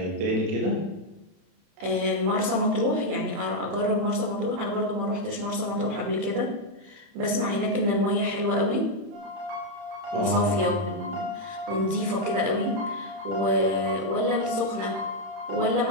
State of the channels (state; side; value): late; left; 30 ms